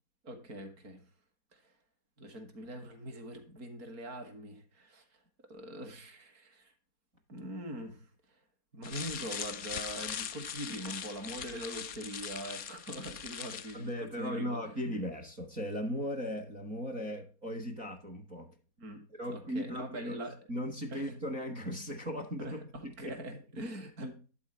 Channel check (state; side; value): late; left; 4.2 ms